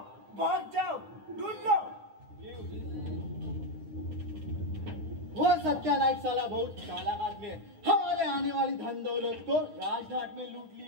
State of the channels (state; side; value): late; left; 9.3 ms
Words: भाग जाओ, ढूंढ लो. वो सत्या नाईक साला बहुत चालाक आदमी है. हमारे आने वाली धन दौलत को राजघाट में लूट